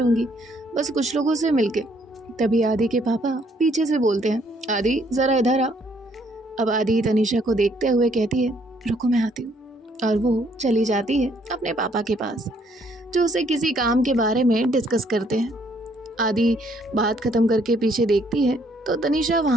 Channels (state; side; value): normal; both; correlation 0.67